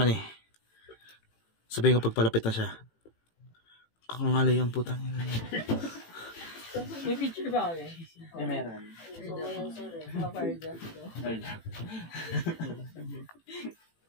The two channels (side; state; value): right; late; 18 ms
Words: eh. Sabihin ko pagpalapit na siya. Kakangalay ang putang ina niya. May picture ba kami? May meron.